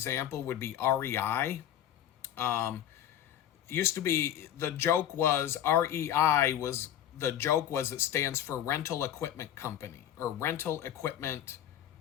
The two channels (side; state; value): right; quieter; 10.8 dB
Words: would be REI. Used to be, the joke was it stands for Rental Equipment Company or Rental Equipment